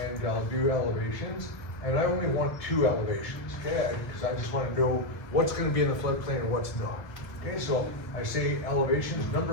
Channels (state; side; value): late; right; 1.3 ms